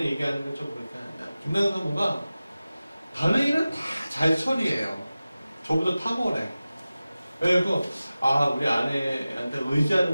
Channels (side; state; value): both; inverted; correlation -0.96